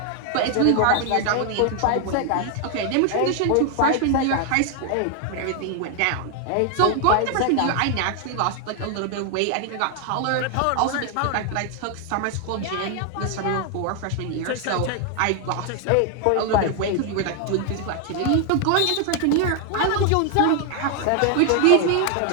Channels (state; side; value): different; both; correlation 0.00